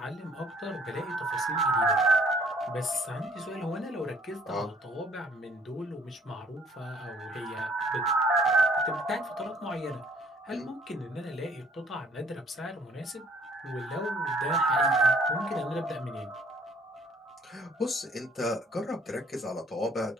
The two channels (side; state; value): both; normal; correlation 0.59